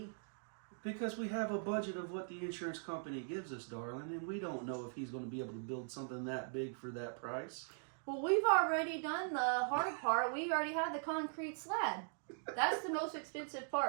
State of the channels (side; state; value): left; silent; digital silence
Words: Because we have a budget of what the insurance company gives us, darling, and we don't know if he's going to be able to build something that big for that price. Well, we've already done the hard part. We already have the concrete slab. That's the most expensive